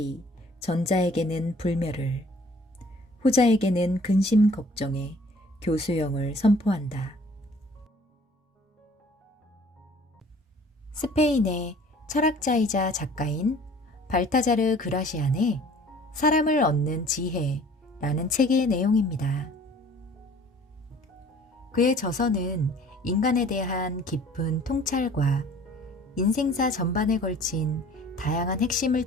전자에게는 불멸을, 후자에게는 근심 걱정의 교수형을 선포한다. 스페인의 철학자이자 작가인 발타자르 그라시안의 사람을 얻는 지혜라는 책의 내용입니다. 그의 저서는 인간에 대한 깊은 통찰과 인생사 전반에 걸친 다양한 핵심을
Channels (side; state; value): both; normal; correlation 0.52